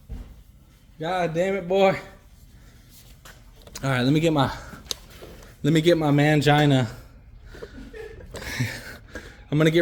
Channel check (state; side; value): identical; both; correlation 1.00